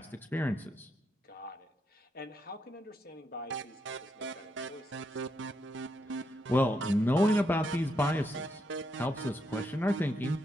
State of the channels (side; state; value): both; normal; correlation 0.80